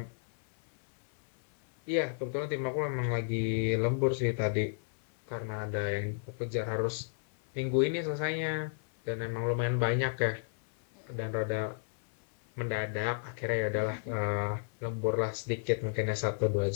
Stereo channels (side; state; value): right; silent; 56 dB below the other